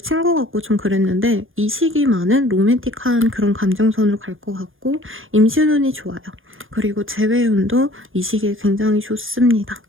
같고 좀 그랬는데 이 시기만은 로맨틱한 그런 감정선으로 갈 것 같고 임신운이 좋아요. 그리고 재회운도 이 시기에 굉장히 좋습니다.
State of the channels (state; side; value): late; left; 0.59 ms